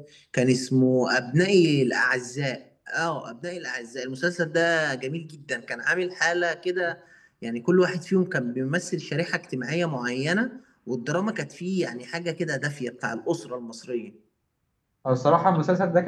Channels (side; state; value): both; identical; correlation 1.00